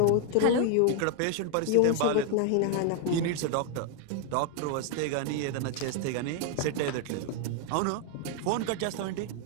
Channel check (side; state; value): both; different; correlation 0.00